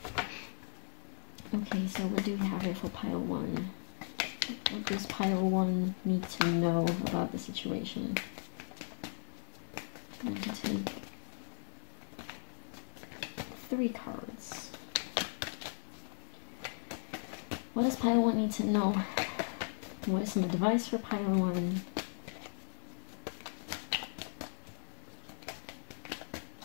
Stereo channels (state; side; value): silent; right; 53 dB below the other